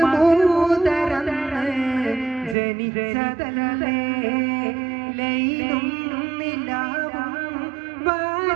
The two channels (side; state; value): left; drops out; at 2.6 s